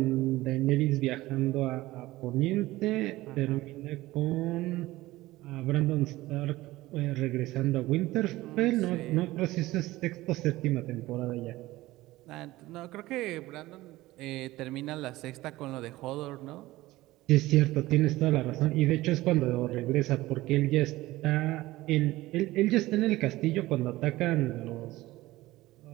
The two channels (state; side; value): quieter; left; 17.9 dB